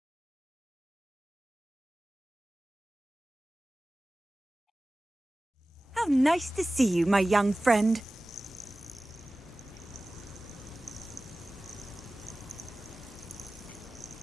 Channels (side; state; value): both; normal; correlation 0.97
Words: How nice to see you, my young friend.